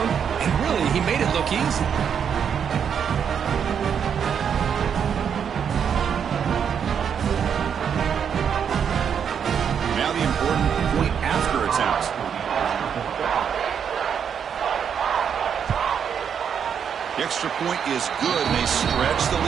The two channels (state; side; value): quieter; left; 7.6 dB